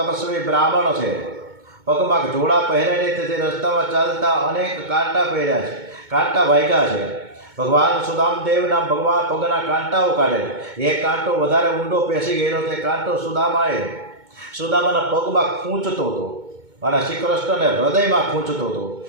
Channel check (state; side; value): late; left; 2.2 ms